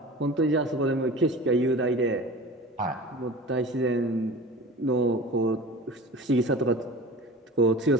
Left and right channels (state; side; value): normal; both; correlation 0.38